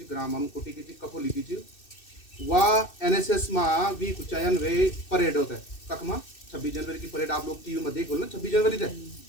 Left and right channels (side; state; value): right; late; 2.6 ms